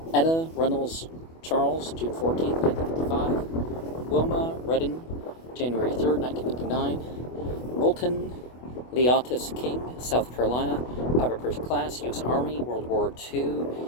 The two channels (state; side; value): late; right; 24 ms